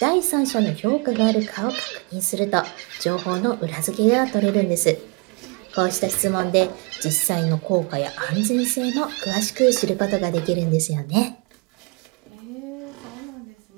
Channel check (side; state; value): left; quieter; 32.2 dB